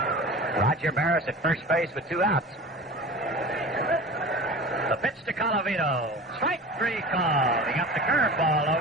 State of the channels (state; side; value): normal; both; correlation 0.36